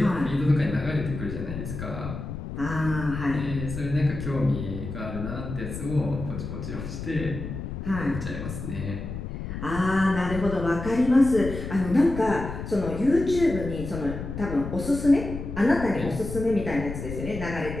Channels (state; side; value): noise; left; rumble, 7 dB below the sound